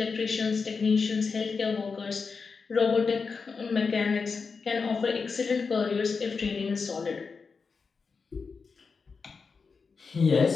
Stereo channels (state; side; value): quieter; right; 5.0 dB